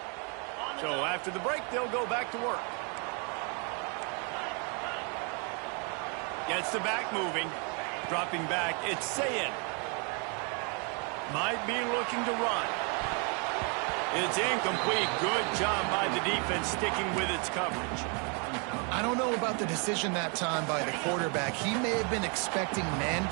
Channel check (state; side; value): quieter; left; 35.7 dB